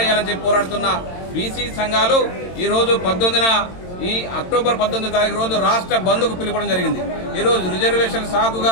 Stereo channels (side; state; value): right; late; 22 ms